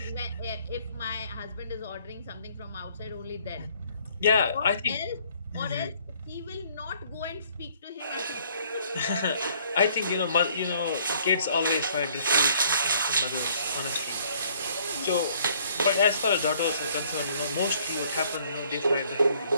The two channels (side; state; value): both; inverted; correlation -0.61